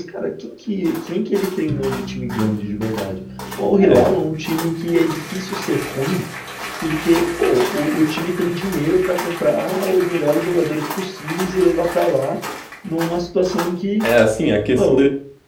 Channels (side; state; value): both; identical; correlation 1.00